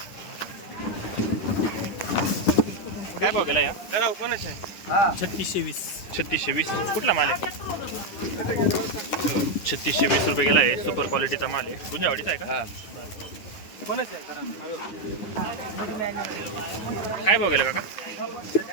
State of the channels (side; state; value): right; late; 9.8 ms